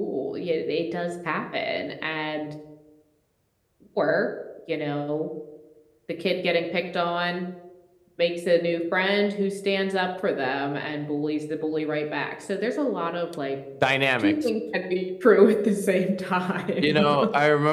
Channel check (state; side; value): identical; both; correlation 1.00